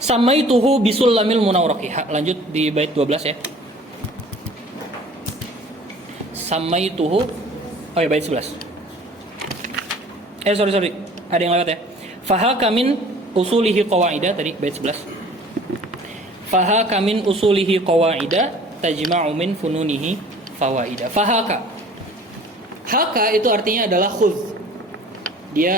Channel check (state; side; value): normal; both; correlation 0.48